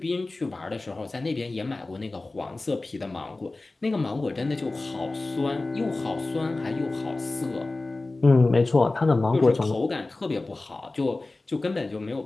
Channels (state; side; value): quieter; right; 3.2 dB